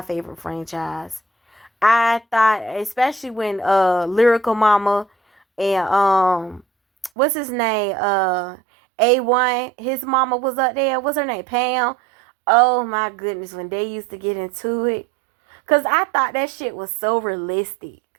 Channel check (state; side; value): drops out; left; at 7.1 s